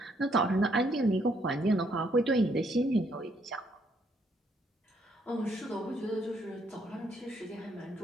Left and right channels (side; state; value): both; normal; correlation 0.70